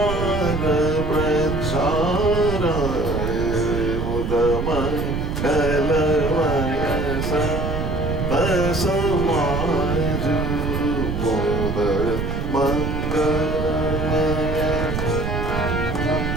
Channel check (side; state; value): right; noise; rumble, 2 dB below the sound